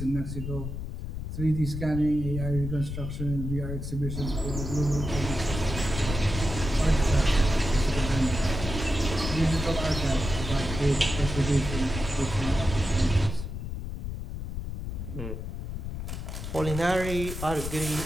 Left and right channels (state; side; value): noise; left; rumble, 6 dB below the sound